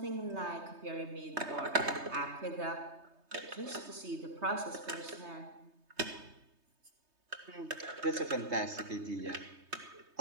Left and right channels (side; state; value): left; late; 3.2 ms